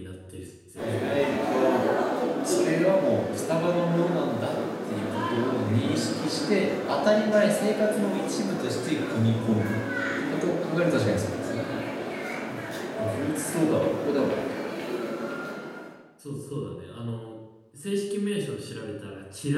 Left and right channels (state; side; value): identical; both; correlation 1.00